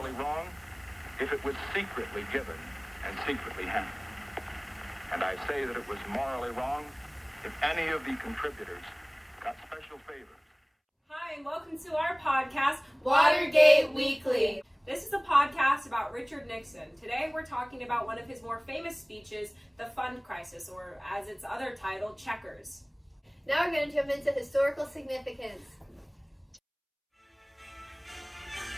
wrong if it was secretly given and secretly handled. And I say that it was morally wrong if any of the contributors got special favors. Hi, and welcome to our podcast, Watergate Weekly. This is a podcast about Richard Nixon. Today we're talking about one of his more famous speeches, the Fund Crisis, or as its other title, Checkers. Now we're going to jump into historical significance.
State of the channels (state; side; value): identical; both; correlation 1.00